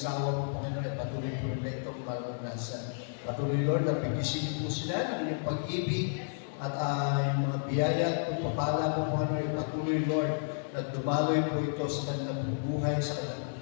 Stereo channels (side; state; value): right; silent; digital silence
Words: po Panginoon at patuloy po nila itong maranasan. Patuloy Lord, at pigisin po sila ng inyong pag-ibig at yung mga biyaya at pagpapala po Panginoon, patuloy Lord, na dumaloy po ito sa kanilang buhay, sa